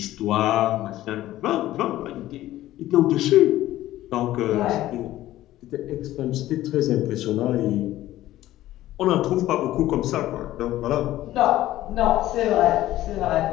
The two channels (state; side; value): quieter; right; 14.8 dB